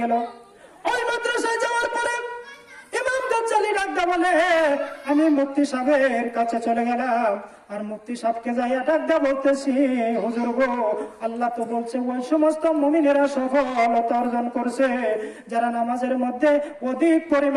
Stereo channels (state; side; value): identical; both; correlation 1.00